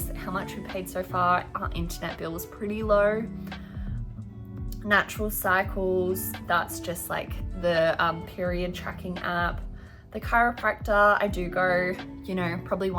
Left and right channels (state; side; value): identical; both; correlation 1.00